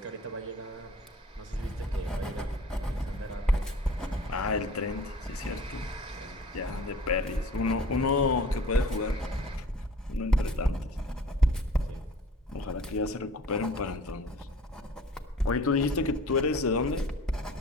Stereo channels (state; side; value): normal; both; correlation 0.47